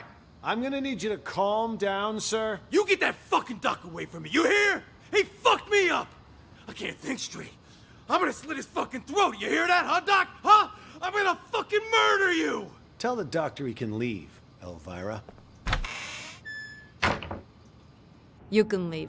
I'm gonna need you to calm down, sir. You get that fucking duck away from me, you hear? He fucked me up! I can't think straight. I'm gonna slit his fucking throat, you hear that, huh, Doc? Huh? I'm gonna fucking murder you! Tell the doctor he can leave, Elvira. You can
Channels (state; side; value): identical; both; correlation 1.00